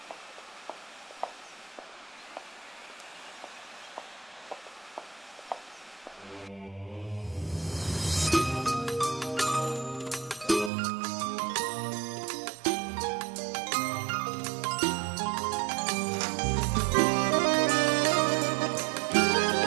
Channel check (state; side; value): drops out; left; at 10.7 s